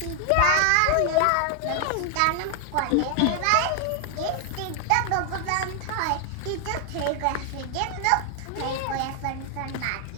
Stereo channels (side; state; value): both; different; correlation 0.00